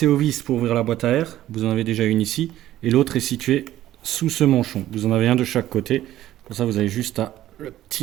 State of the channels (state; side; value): quieter; left; 13.6 dB